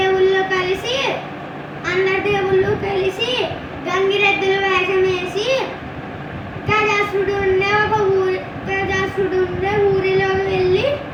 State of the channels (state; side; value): identical; both; correlation 1.00